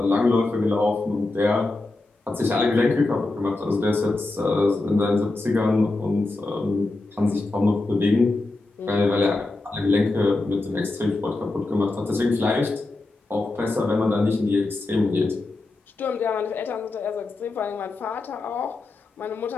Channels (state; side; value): quieter; right; 3.1 dB